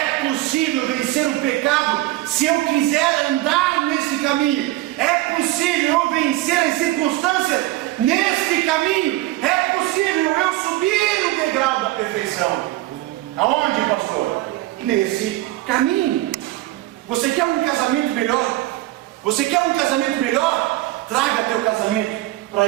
possível vencer o pecado se eu quiser andar nesse caminho. É possível eu vencer as circunstâncias neste caminho. É possível eu subir o degrau da perfeição. Aonde, pastor? Nesse caminho. Você quer um casamento melhor? Você quer um casamento melhor? Traga teu casamento para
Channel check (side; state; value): left; quieter; 17.0 dB